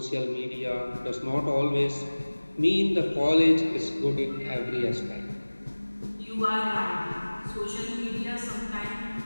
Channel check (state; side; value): inverted; both; correlation -1.00